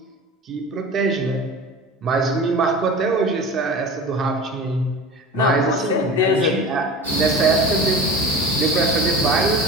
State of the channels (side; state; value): both; normal; correlation 0.34